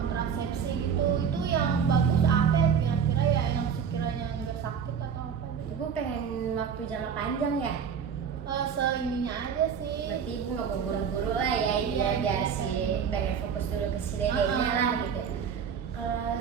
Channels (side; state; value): left; quieter; 7.1 dB